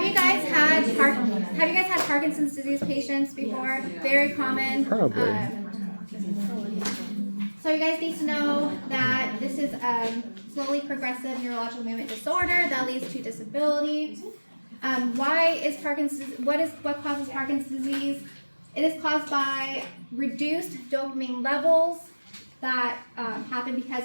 you guys had Parkinson's disease patients before? Very common. Probably. So you guys need to know that this is slowly progressive neurological movement disorder that leads to disability. Why is Parkinson's? What causes Parkinson's disease? It is caused by reduced dopamine levels that happen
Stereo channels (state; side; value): inverted; both; correlation -1.00